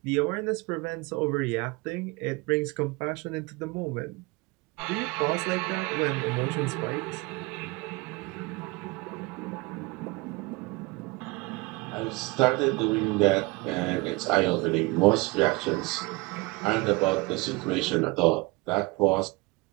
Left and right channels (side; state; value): left; quieter; 24.4 dB